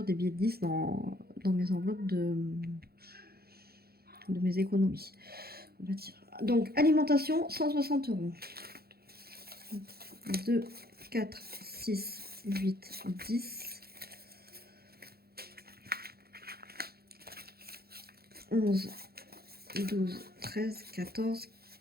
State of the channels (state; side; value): late; left; 0.45 ms